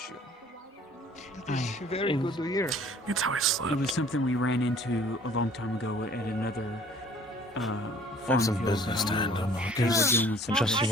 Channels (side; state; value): both; normal; correlation 0.53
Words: That is very good to hear. It's how I slept. It was something we ran into a long time ago at another Have some business to handle, Marcus. Just